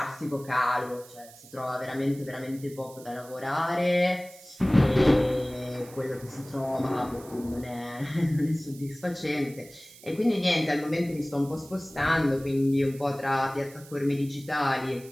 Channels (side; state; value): right; noise; hiss, 21 dB below the sound